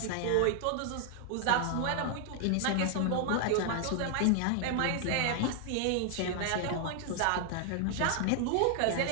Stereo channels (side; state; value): both; different; correlation 0.00